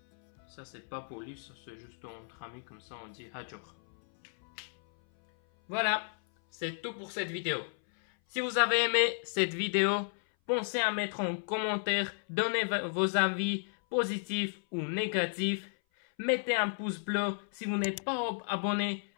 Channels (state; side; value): silent; right; 56 dB below the other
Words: pas poli, ça c'est juste entre amis, comme ça on dit Hajor. Voilà, c'est tout pour cette vidéo. Si vous avez aimé cette vidéo, pensez à mettre en commentaire, donnez vos avis positifs ou négatifs. Mettez un pouce bleu. Si vous n'êtes pas abonné,